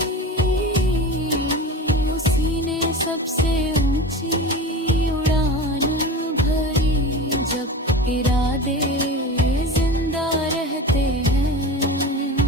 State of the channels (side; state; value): both; normal; correlation 0.31